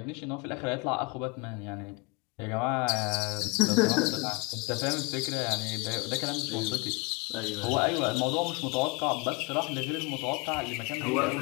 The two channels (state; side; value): quieter; right; 29.3 dB